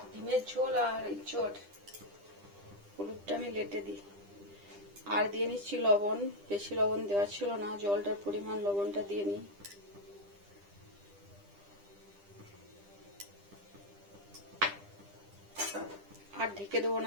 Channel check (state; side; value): late; left; 10 ms